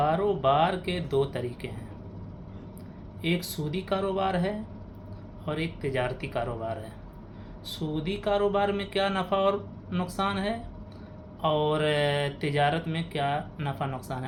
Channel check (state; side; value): identical; both; correlation 1.00